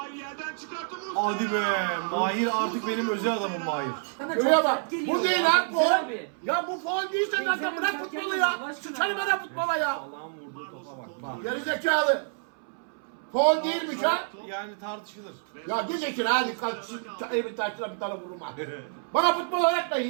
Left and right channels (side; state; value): left; silent; 59 dB below the other